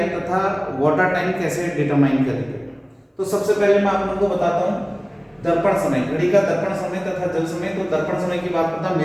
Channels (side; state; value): both; identical; correlation 1.00